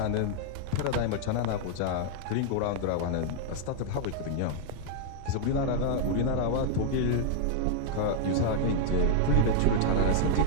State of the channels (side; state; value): both; different; correlation 0.00